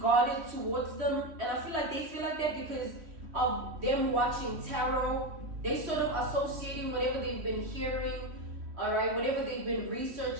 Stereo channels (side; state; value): left; late; 3.1 ms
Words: towards them. And I feel like they feel like that because of them watching tarot. They sort of associating whatever they've been hearing, all right, whatever they've been